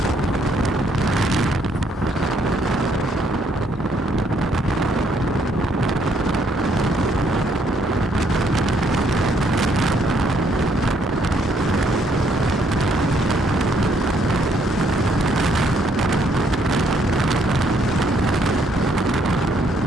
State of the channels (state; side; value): normal; both; correlation 0.69